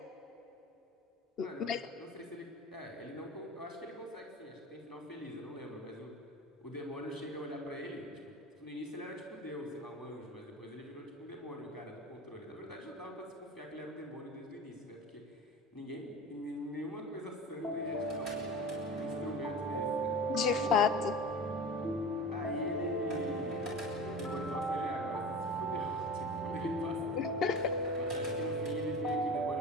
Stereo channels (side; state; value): both; normal; correlation 0.33